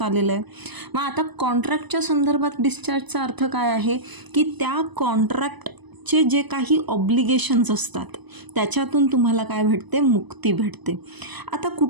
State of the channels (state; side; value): late; left; 1.0 ms